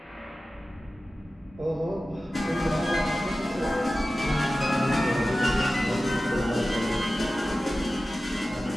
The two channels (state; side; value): normal; both; correlation 0.95